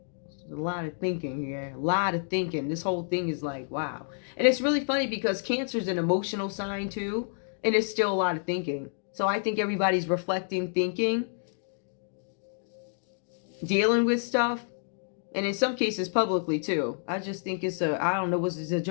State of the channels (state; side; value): silent; right; digital silence